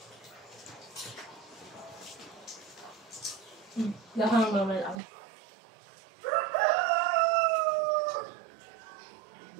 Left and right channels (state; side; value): drops out; left; at 5.0 s